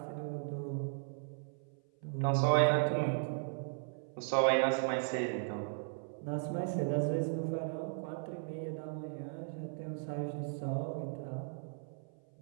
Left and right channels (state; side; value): silent; left; 53 dB below the other